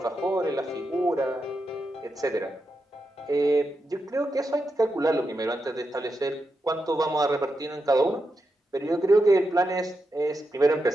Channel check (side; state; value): both; normal; correlation 0.87